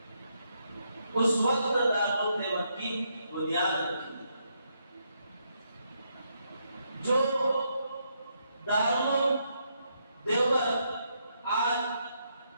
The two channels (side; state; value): both; inverted; correlation -0.77